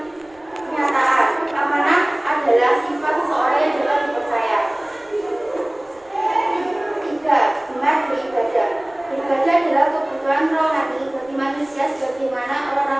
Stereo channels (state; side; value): noise; right; rumble, 29 dB below the sound